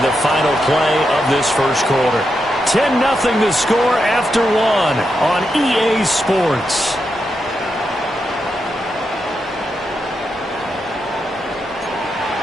the final play of this first quarter. 10-0 the score after 1 on EA Sports.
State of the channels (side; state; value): both; normal; correlation 0.85